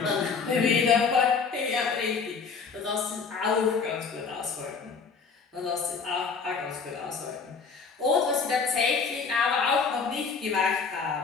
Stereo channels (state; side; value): quieter; right; 5.3 dB